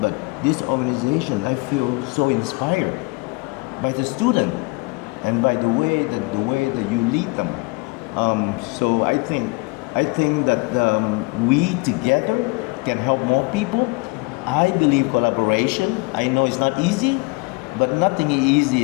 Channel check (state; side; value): quieter; right; 27.4 dB